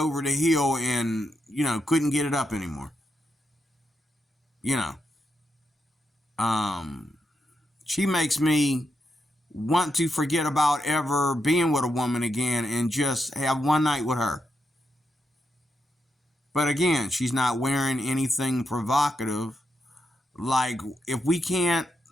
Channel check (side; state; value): both; normal; correlation 0.84